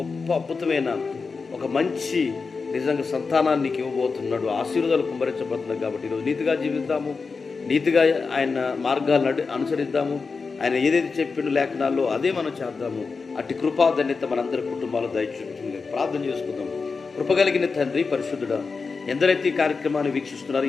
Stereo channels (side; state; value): right; quieter; 4.7 dB